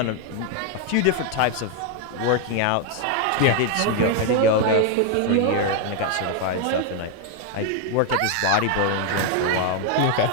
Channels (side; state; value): both; different; correlation 0.01